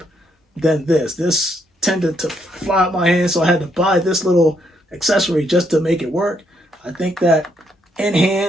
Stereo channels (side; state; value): both; normal; correlation 0.74